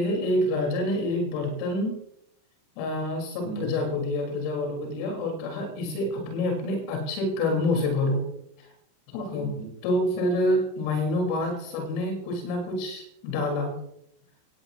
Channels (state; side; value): late; right; 33 ms